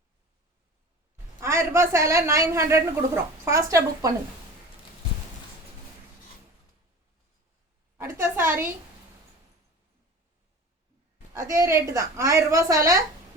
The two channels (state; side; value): normal; both; correlation 0.37